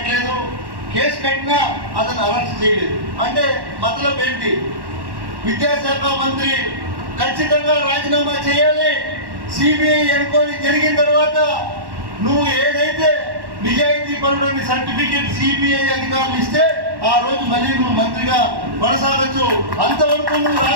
కేసు కట్టినా అతను అరెస్ట్ చేయలేదు. అంటే మతలబ్ ఏంటి? విద్యాశాఖ మంత్రి ఖచ్చితంగా రాజీనామా చేయాలి. సిబిఐ ఎంక్వైరీ జరిగిన తర్వాత నువ్వు ఏదైతే నిజాయితీ పరుడని సర్టిఫికేట్ సిబిఐ అధికారులు ఇస్తే ఆ రోజు మళ్ళీ నువ్వు మంత్రిగా కొనసాగచ్చు. అంతవరకు నువ్వు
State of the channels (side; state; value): left; late; 1.1 ms